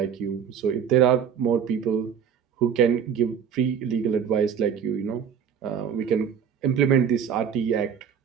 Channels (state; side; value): quieter; left; 7.7 dB